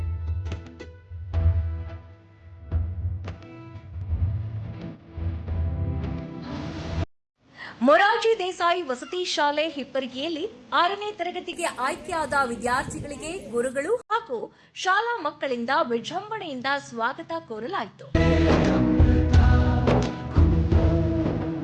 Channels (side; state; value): both; identical; correlation 1.00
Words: ಮೊರಾರ್ಜಿ ದೇಸಾಯಿ ವಸತಿ ಶಾಲೆ ಹಿಪ್ಪರಿಗೆಯಲ್ಲಿ 6ನೇ ತರಗತಿಗೆ ಆಯ್ಕೆಯಾದ ವಿದ್ಯಾರ್ಥಿಗಳಿಗೆ ಗುರುಗಳು ಹಾಗೂ ಶಾಲಾ ಮಕ್ಕಳಿಂದ ವಿಜೃಂಭಣೆಯಿಂದ ಸ್ವಾಗತ ಕೋರಲಾಯಿತು.